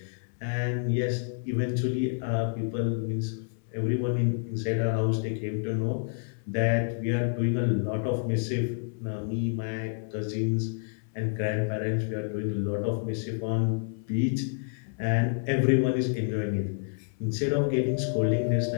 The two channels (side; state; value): right; silent; 59 dB below the other